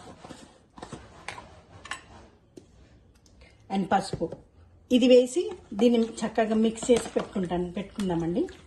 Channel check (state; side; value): identical; both; correlation 1.00